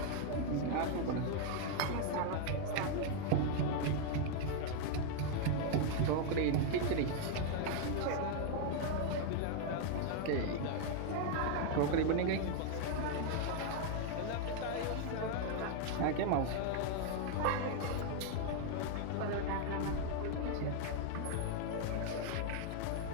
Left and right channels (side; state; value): both; different; correlation 0.00